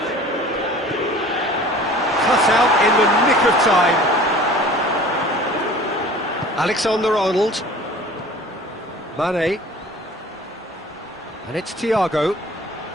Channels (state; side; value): normal; both; correlation 0.45